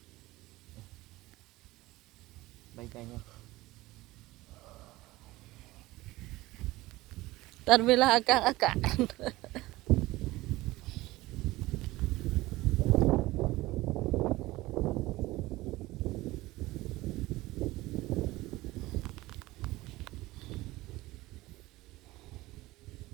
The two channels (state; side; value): quieter; left; 18.9 dB